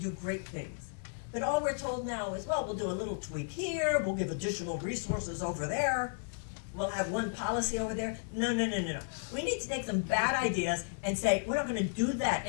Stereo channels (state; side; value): silent; right; digital silence